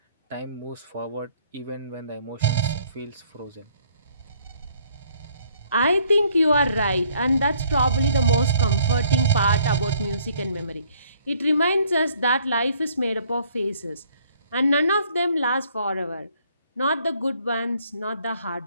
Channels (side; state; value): both; inverted; correlation -0.63